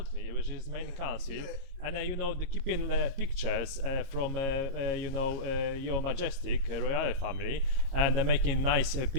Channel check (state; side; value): late; left; 23 ms